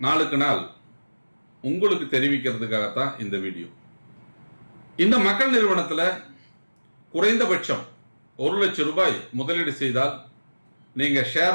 நாளுக்கு நாள் உங்களுக்கு தெரிவிக்கிறதுக்காகத்தான் இந்த வீடியோ. இந்த மக்கள் நிறுவனத்தில் குறைந்தபட்சம் 1 லட்சம் ரூபாய் முதலீடு செய்தால் நீங்க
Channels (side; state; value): both; inverted; correlation -1.00